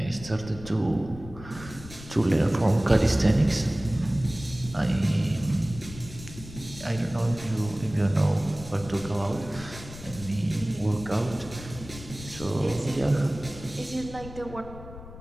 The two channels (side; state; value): left; noise; rumble, 14 dB below the sound